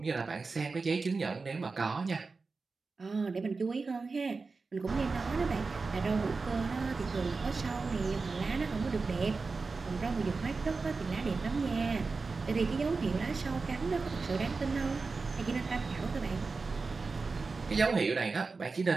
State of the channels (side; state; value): left; quieter; 4.2 dB